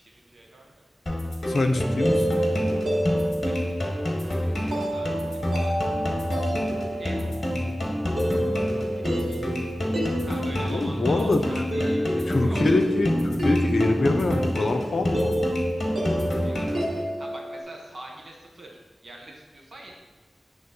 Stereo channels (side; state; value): both; normal; correlation 0.95